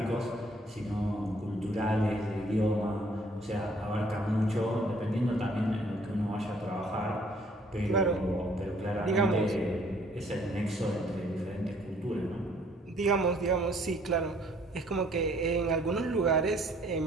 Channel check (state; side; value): normal; both; correlation 0.61